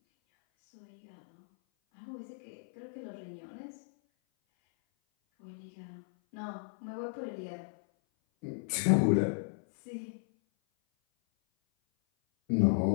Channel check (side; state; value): right; silent; 55 dB below the other